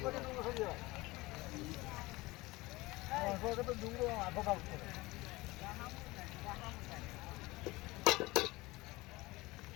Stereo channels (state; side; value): quieter; right; 21.1 dB